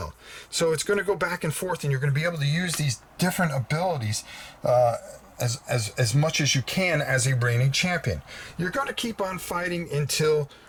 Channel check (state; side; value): identical; both; correlation 1.00